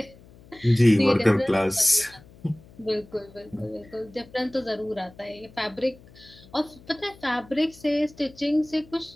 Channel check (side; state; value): left; noise; hum, 23 dB below the sound